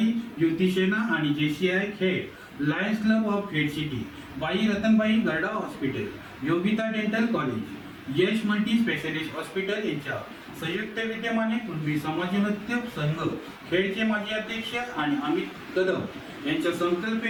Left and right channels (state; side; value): identical; both; correlation 1.00